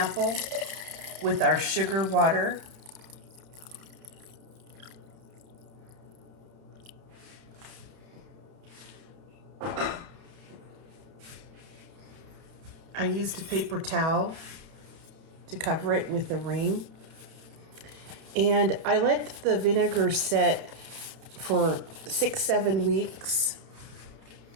with our sugar water. I used a paper towel to cover it with a ring. And I let the vinegar set for 6-7 weeks.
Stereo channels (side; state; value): left; late; 31 ms